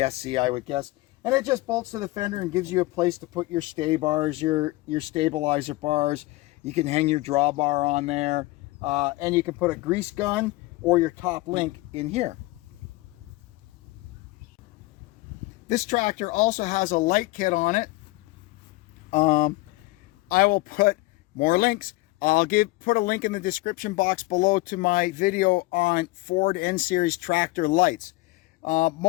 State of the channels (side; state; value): right; quieter; 20.7 dB